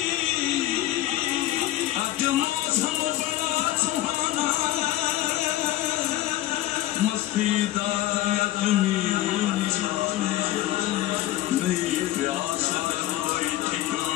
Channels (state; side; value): quieter; right; 14.8 dB